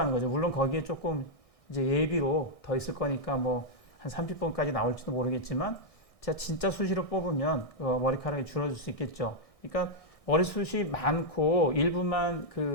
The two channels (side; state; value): right; late; 1.6 ms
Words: 거죠. 물론 거기에 조금 이제 예비로 더 있을 거니까 뭐 한 30번까지 나올지도 모르겠지만 제가 진짜 수시로 뽑으면 머리카락이 줄어들 수 있겠죠. 그러니까 머리숱이 많고 일부만